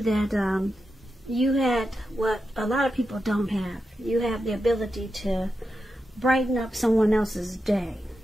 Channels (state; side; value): normal; both; correlation 0.89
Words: that you had what a lot of people don't have. You have the ability to brighten up someone else's day.